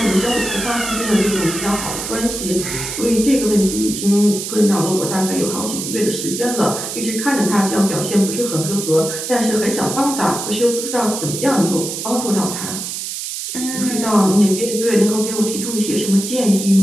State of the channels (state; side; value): noise; right; hiss, 6 dB below the sound